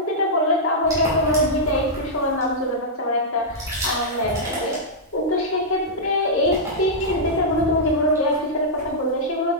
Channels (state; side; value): normal; both; correlation -0.09